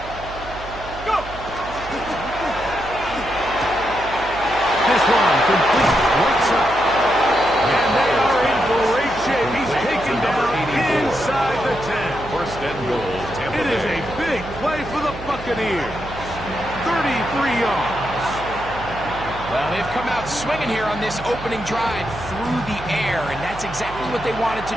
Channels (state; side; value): noise; right; hum, 14 dB below the sound